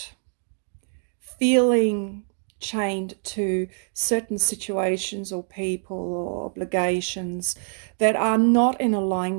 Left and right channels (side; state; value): left; silent; 62 dB below the other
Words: feeling chained to certain situations or people or obligations that are not in